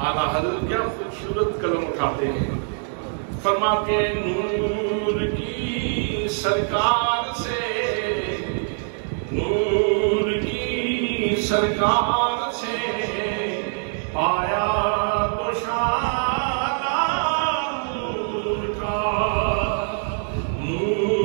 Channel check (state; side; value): silent; left; 57 dB below the other